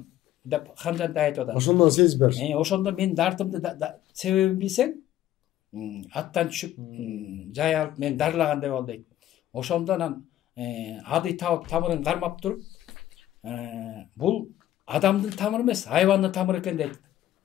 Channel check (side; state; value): right; quieter; 13.1 dB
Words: деп Хан Жантай айтып атат. Ошондон сезип бериш. Ошондо мен дартымды себебин билсең, аттан түшүп, жай алып мен дарылагандай бол дейт. Ошондо анан Адай Табып тамырын кармап туруп, бул адамдын тамыры эмес, хайвандын тамыры экен дейт.